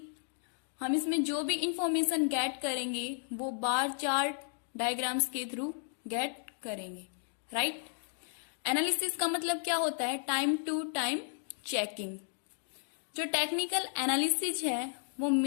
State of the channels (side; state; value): right; silent; digital silence